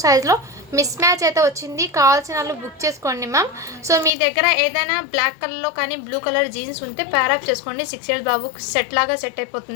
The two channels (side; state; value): right; drops out; at 4.1 s